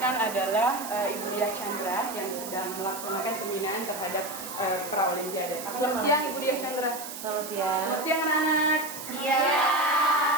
adalah Ibu Diah Chandra yang sedang melaksanakan pembinaan terhadap pra-olimpiade. Selamat siang Ibu Diah Chandra. Selamat siang. Selamat siang anak-anak. Iya.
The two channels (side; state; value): right; noise; hiss, 10 dB below the sound